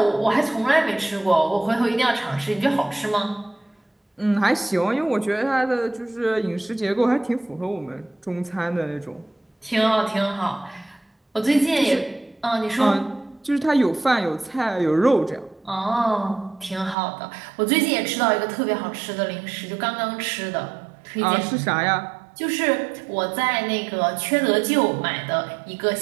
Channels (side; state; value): left; drops out; at 16.9 s